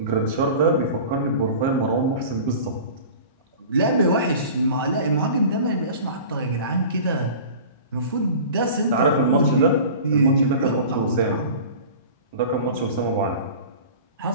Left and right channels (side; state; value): both; inverted; correlation -0.39